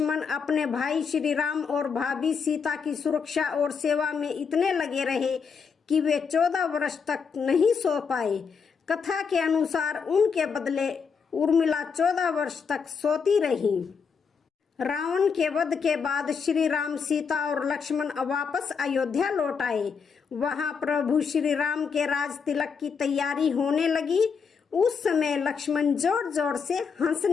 अपने भाई श्री राम और भाभी सीता की सुरक्षा और सेवा में इतने लगे रहे कि वे 14 वर्ष तक नहीं सो पाए। कथा के अनुसार उनके बदले उर्मिला 14 वर्ष तक सोती रही। रावण के वध के बाद श्री राम, सीता और लक्ष्मण वापस अयोध्या लौट आए। वहां प्रभु श्री राम के राज तिलक की तैयारी होने लगी। उस समय लक्ष्मण जोर जोर से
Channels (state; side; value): quieter; right; 6.0 dB